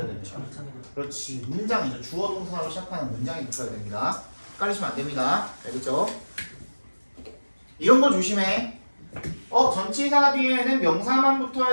됩니까? 그렇지, 문장이죠. 주어 동사로 시작하는 문장이 붙어야 됩니다. 헷갈리시면 안 됩니다. 알겠죠? 이런 거 조심해. 전치사 뒤에는 명사만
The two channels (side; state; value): both; inverted; correlation -1.00